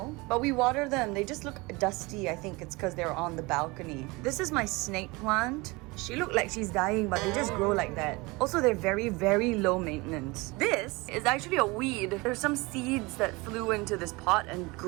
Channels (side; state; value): left; quieter; 24.5 dB